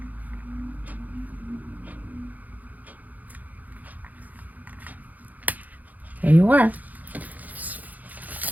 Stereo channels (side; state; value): left; late; 0.080 ms